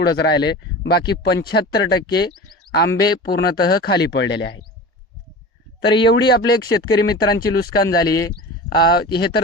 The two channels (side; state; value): both; normal; correlation 0.34